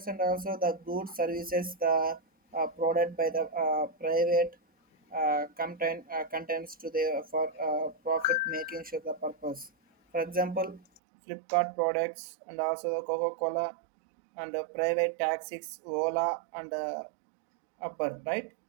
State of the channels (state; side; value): drops out; left; at 11.0 s